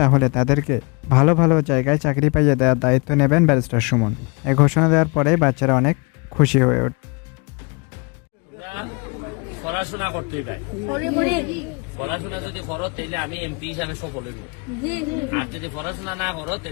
তাহলে তাদেরকে ভালো ভালো জায়গায় চাকরি পাইয়ে দেওয়ার দায়িত্ব নেবেন ব্যারিস্টার সুমন। এই ঘোষণা দেওয়ার পরে বাচ্চারা অনেক খুশি হয়ে ওঠে। পড়াশোনা করতেই পাই, পড়াশোনা যদি করো তাহলে আমি এমপি হিসাবে সফল হইব, আর যদি পড়াশোনা না করো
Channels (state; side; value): quieter; right; 31.1 dB